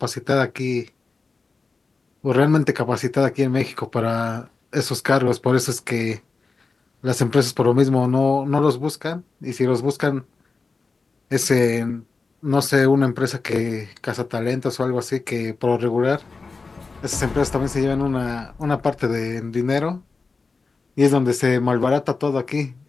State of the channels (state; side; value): quieter; right; 4.2 dB